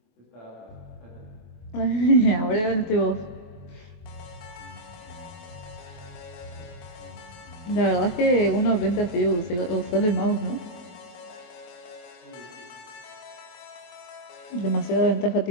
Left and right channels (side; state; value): right; late; 24 ms